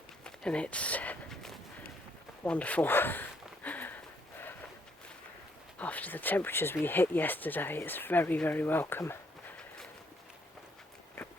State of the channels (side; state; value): both; normal; correlation 0.71